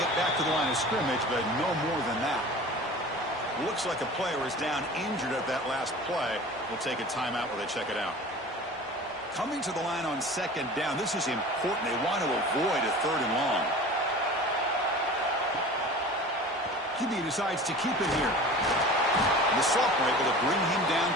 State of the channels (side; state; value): both; normal; correlation 0.39